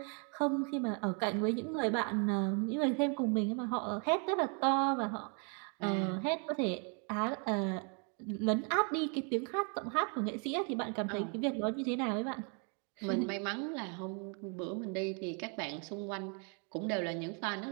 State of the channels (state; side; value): quieter; left; 38.0 dB